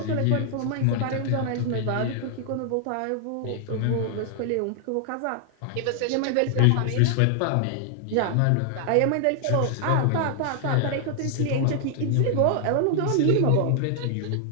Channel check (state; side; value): different; both; correlation 0.00